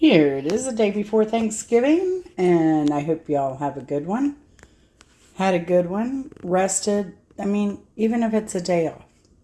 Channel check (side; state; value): both; identical; correlation 1.00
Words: it is, the day before Thanksgiving, and I hope y'all have a good one. Had a good one, rested. I mean, even if it's a day off,